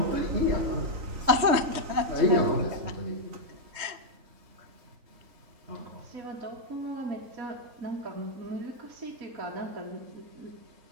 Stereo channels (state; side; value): late; left; 3.2 ms